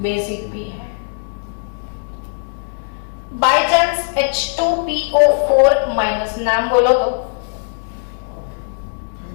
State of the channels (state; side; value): silent; right; digital silence